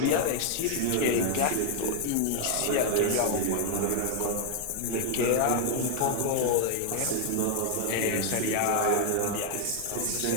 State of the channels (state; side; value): different; both; correlation 0.00